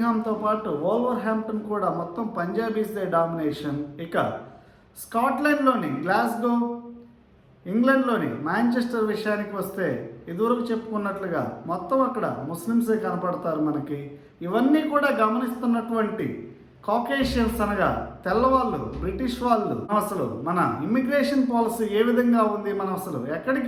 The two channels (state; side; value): identical; both; correlation 1.00